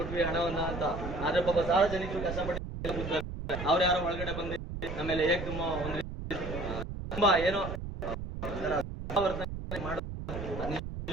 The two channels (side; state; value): right; noise; rumble, 7 dB below the sound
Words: ಹಣವನ್ನ ಅಂತ. ಆದ್ರೆ ಪಾಪ ಸಾರ್ವಜನಿಕರು ಕಷ್ಟಪಟ್ಟು ಅವ್ರು ಯಾರೋ ಒಳಗಡೆ ಬಂದು ನಮ್ಮೇಲೆ ಹೇಗೆ ತುಂಬಾ ಏನೋ